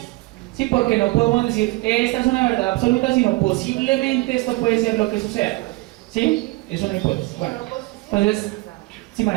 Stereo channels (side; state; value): left; quieter; 22.0 dB